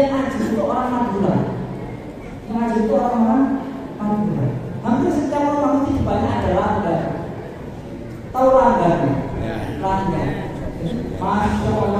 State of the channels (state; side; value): identical; both; correlation 1.00